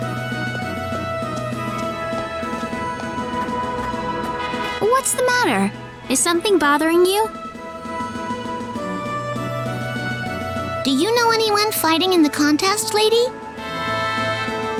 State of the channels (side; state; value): both; identical; correlation 1.00